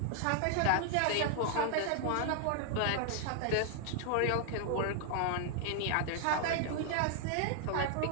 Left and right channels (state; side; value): different; both; correlation 0.00